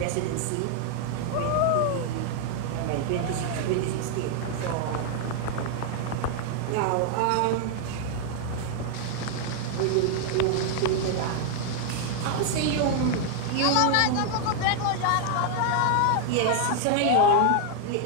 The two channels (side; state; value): both; different; correlation 0.00